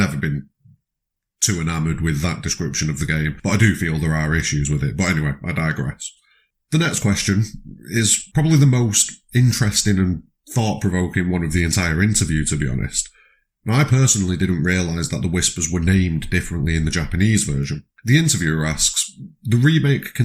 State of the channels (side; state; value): both; identical; correlation 1.00